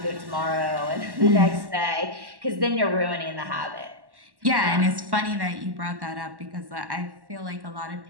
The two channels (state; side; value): late; left; 1.1 ms